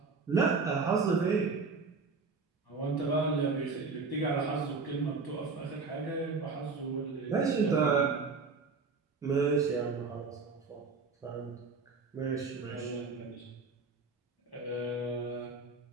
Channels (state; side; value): quieter; left; 4.4 dB